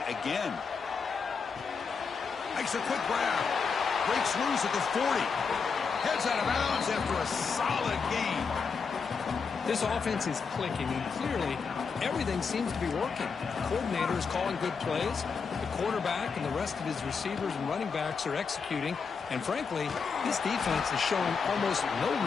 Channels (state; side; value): quieter; right; 5.5 dB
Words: again. Makes a quick grab. Breaks loose at the 40. Heads out of bounds after a solid gain. This offense is clicking, and clearly everything seems to be working. The coordinator is calling good plays. The quarterback and the rest of his receivers and running backs are executing. And frankly, this defense is showing almost no